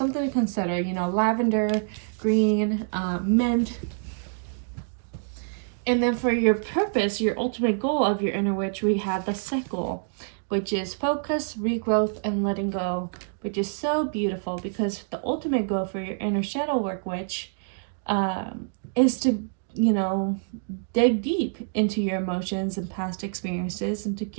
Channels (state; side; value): silent; left; digital silence